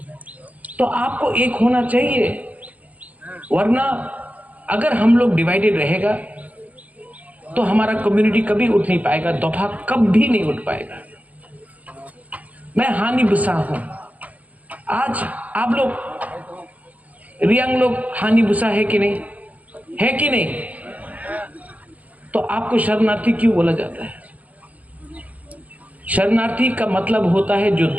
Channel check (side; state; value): left; late; 0.072 ms